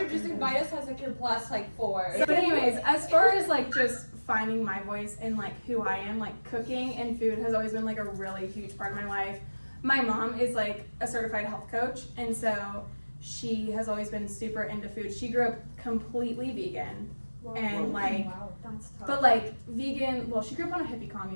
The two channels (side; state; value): both; inverted; correlation -1.00